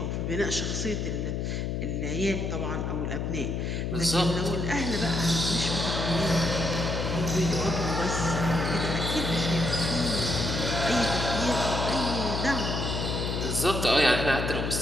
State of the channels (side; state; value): left; noise; hum, 1 dB below the sound